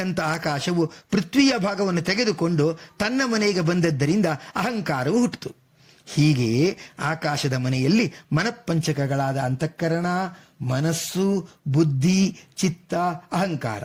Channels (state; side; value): identical; both; correlation 1.00